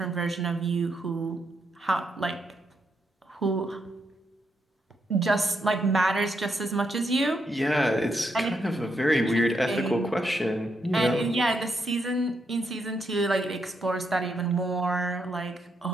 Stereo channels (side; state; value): both; normal; correlation 0.80